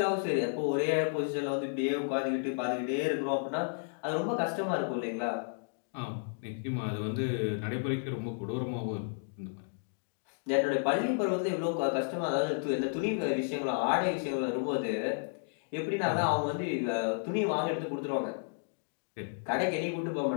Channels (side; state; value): right; silent; digital silence